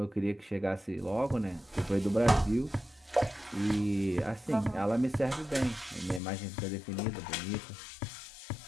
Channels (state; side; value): drops out; right; at 6.2 s